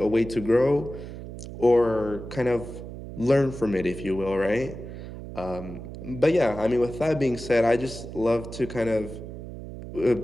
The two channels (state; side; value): noise; right; hum, 11 dB below the sound